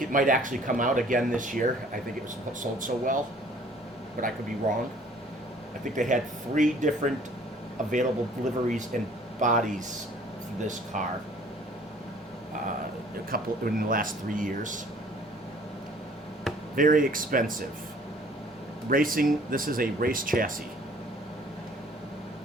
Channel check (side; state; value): both; normal; correlation 0.55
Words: it might actually come out again this year. I think it was sold so well, but I could be wrong. I think they had 3 different available liveries and bodies for this car. A couple in the last 3 years. Very expensive. Racing, this is a race chassis.